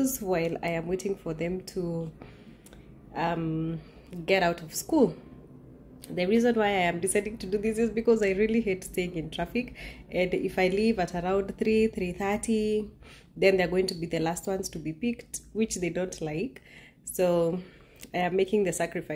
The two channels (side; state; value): both; identical; correlation 1.00